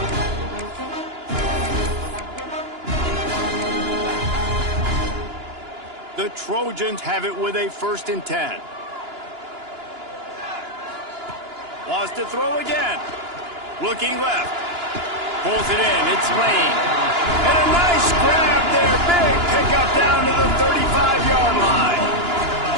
The Trojans have it with a 1st and 10. Wants to throw again. Looking left. Pulls it in. It's Lane. And a nice grab there. Big pickup down to the 35-yard line.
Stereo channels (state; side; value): late; left; 2.9 ms